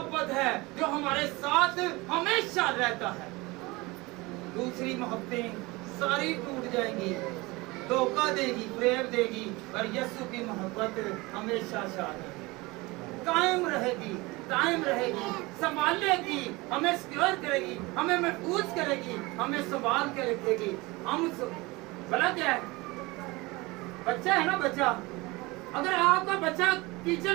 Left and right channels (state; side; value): quieter; left; 22.9 dB